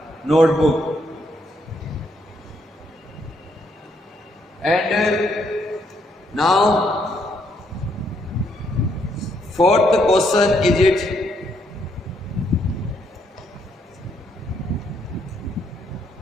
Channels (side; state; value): both; normal; correlation 0.73